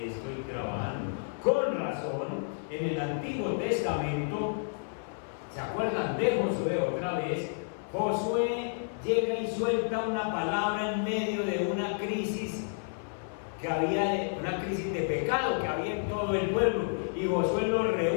trabajando. Con razón, en el Antiguo Testamento, ¿se acuerdan de Josué otra vez? Josué llega y suelta una palabra en medio de una crisis que había, una crisis de pecado que había en todo el pueblo, y Josué lo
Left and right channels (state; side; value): silent; right; 57 dB below the other